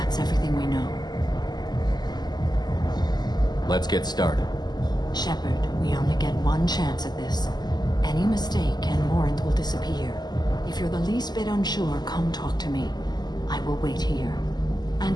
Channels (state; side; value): late; right; 0.20 ms